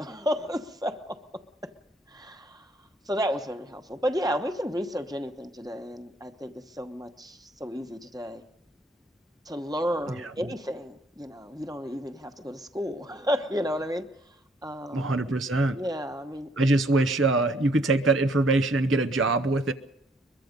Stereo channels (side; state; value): both; normal; correlation 0.65